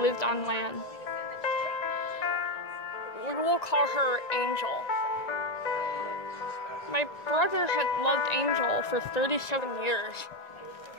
on land. We will call her Angel. My brother had loved Angel for 37 years.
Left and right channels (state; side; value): late; right; 1.9 ms